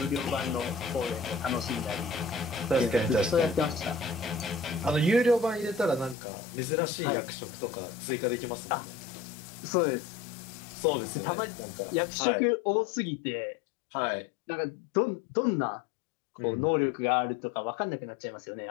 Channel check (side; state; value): right; drops out; at 6.2 s